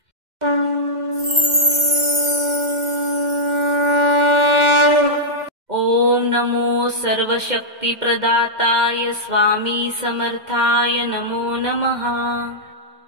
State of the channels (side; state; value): left; late; 2.1 ms